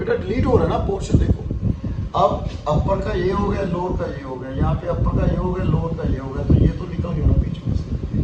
डिलीट हो रहा है ना पोर्शन। देखो अब अपर का ये हो गया, लोअर का ये हो गया, यहाँ पे अपर का ये हो गया, लोअर का ये हो गया, तो ये तो निकल गया ना बीच में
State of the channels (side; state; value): both; identical; correlation 1.00